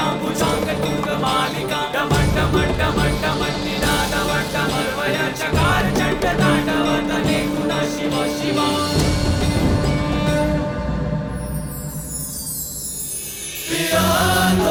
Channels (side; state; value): both; identical; correlation 1.00